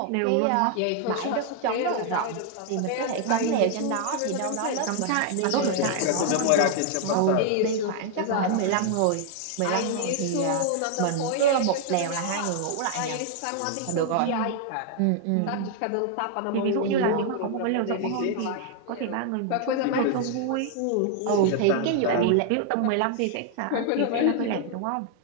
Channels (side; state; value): both; different; correlation 0.00